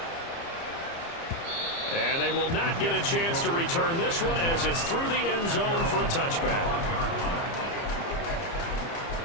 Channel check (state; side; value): late; right; 30 ms